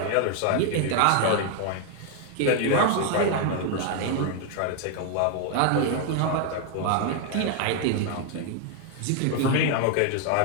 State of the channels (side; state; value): both; different; correlation 0.00